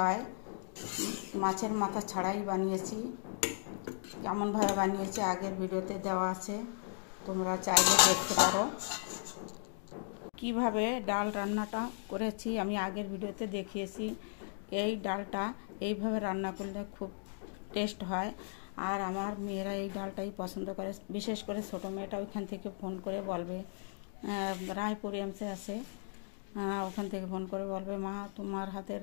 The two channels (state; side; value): silent; right; digital silence